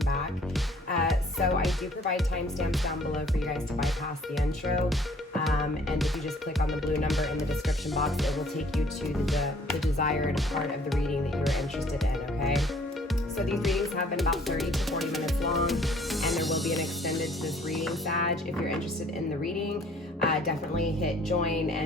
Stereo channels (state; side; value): normal; both; correlation 0.57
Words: So I do provide timestamps down below for you guys to bypass the intro. And if you just click on the blue number in the description box, it will take you to the desired part of the reading that you're interested in, okay? So these readings have been about 30 to 40 minutes long, and there will be an extended to this reading, Sag. If you're interested in the reading, definitely hit join